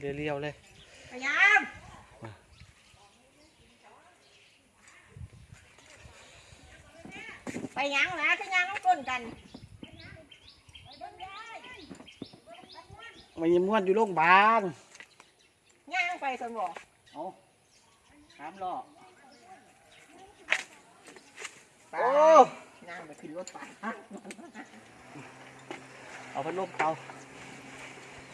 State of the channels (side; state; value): both; identical; correlation 1.00